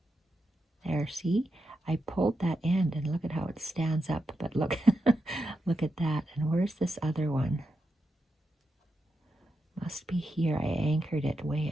There, see? I pulled that end and look at how it stands up, but look, look at that. And where's this other one? Must be here. I anchored it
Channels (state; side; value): normal; both; correlation 0.86